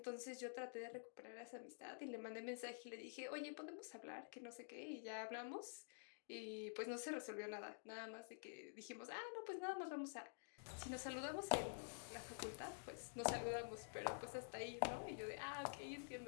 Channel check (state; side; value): silent; right; digital silence